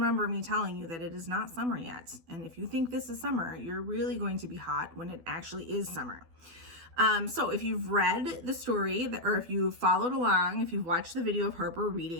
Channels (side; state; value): left; late; 12 ms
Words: me telling you that it is not summer yet. And if you think this is summer, you're really going to be hot when it actually is summer. So if you've read the story, or if you've followed along, if you've watched the video of Harper